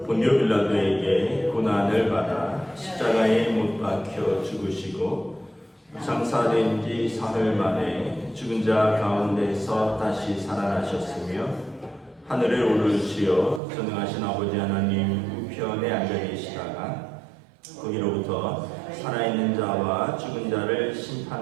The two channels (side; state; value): left; drops out; at 13.6 s